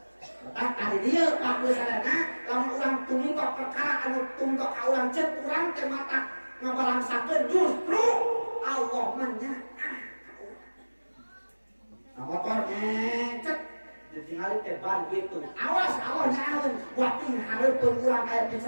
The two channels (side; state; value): both; inverted; correlation -1.00